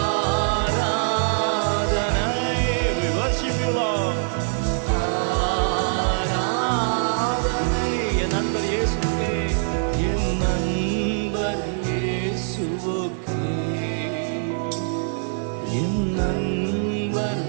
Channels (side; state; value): left; silent; 63 dB below the other